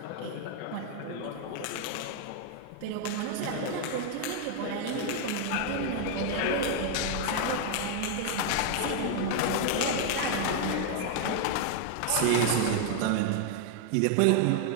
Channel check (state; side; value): different; both; correlation 0.00